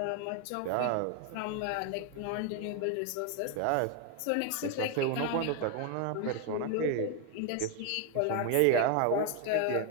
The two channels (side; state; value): both; different; correlation 0.01